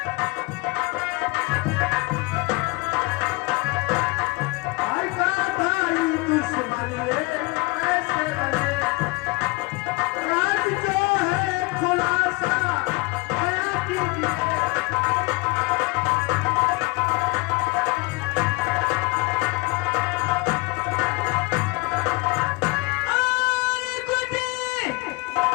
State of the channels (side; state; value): right; quieter; 24.8 dB